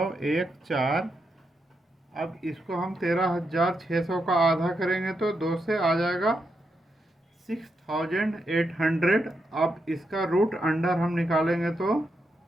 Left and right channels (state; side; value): normal; both; correlation 0.83